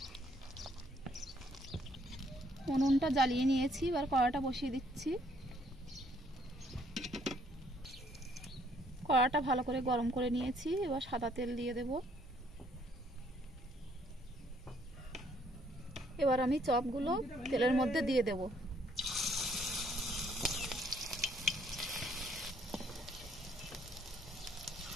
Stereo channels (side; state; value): both; normal; correlation 0.66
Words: उनुनटा জ্বালিয়ে নিয়েছি, এবার কড়াটা বসিয়ে দিচ্ছি। কড়াটা ভালো করে গরম করে নিয়েছি, এবার সাদা তেল দিয়ে দেব। এবার আমি চপগুলো তেলের মধ্যে দিয়ে দেব।